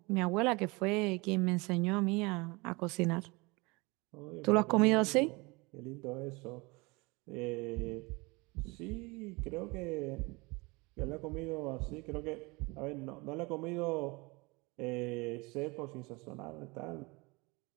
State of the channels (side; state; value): left; quieter; 25.8 dB